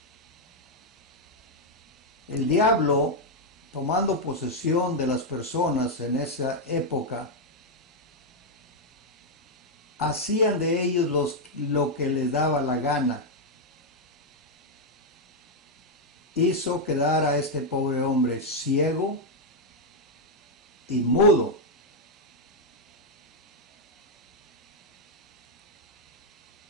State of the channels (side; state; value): both; normal; correlation 0.00